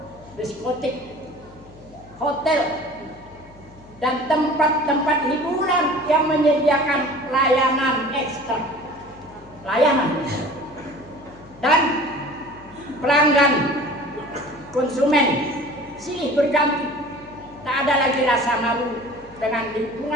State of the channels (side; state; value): left; noise; hum, 24 dB below the sound